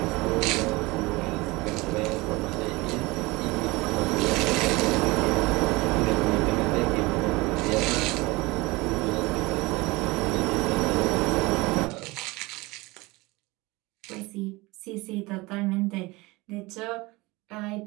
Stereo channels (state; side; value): quieter; left; 22.7 dB